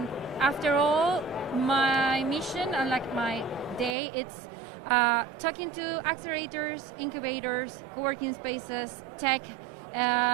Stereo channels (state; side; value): drops out; left; at 4.0 s